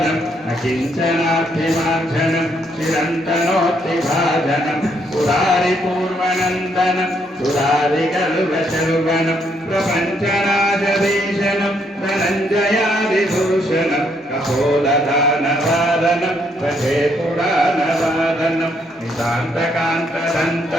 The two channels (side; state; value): both; normal; correlation 0.72